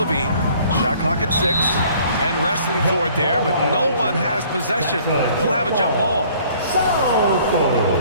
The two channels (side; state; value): both; inverted; correlation -0.56